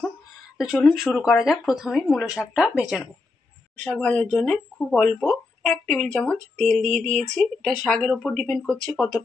তো চলুন শুরু করা যাক। প্রথমে মূলো শাকটা ভেজে নেব। শাক ভাজার জন্য খুব অল্প 1 টেবিল চামচ তেল দিয়ে দিয়েছি। এটা শাকের ওপর ডিপেন্ড করছে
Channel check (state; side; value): quieter; right; 3.7 dB